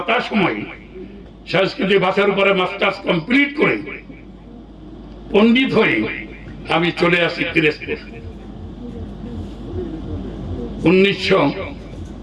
সংস্কৃতি ভাষার উপরে মাস্টার্স কমপ্লিট করে পণ্ডিত হয়ে আমি চলে আসি পিরোজপুর।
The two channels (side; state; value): both; identical; correlation 1.00